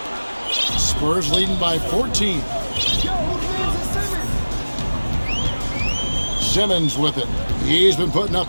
Spurs leading by 14. Simmons with it. He's been putting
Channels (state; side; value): inverted; both; correlation -1.00